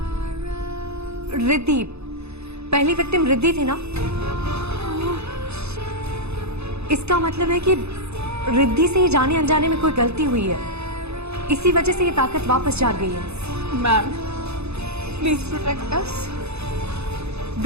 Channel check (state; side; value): late; left; 0.80 ms